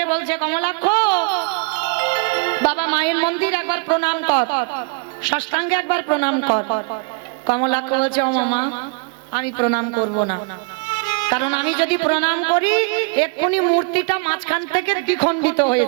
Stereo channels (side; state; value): left; quieter; 32.8 dB